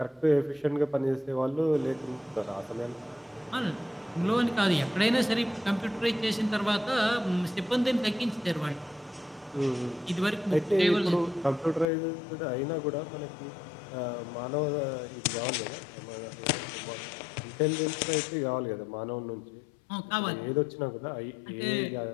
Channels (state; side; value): drops out; right; at 11.9 s